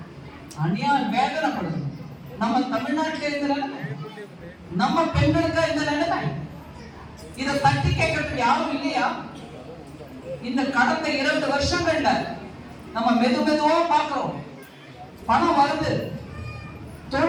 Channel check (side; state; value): both; identical; correlation 1.00